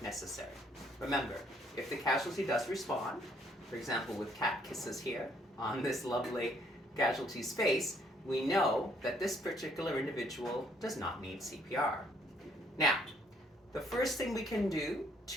necessary. Remember, if the casualty does respond, for example with cat kisses here on this lovely casualty's face, we know that this particular individual does not need CPR. Now, the first thing we can do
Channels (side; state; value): both; normal; correlation 0.66